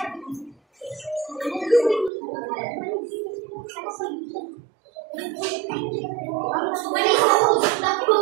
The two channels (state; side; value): drops out; left; at 2.1 s